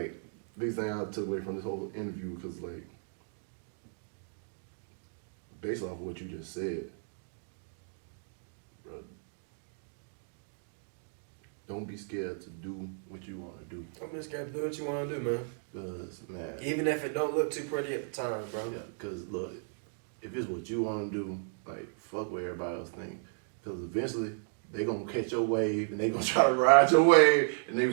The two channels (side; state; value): left; silent; digital silence